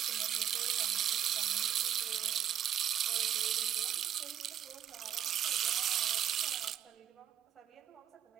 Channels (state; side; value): quieter; left; 9.9 dB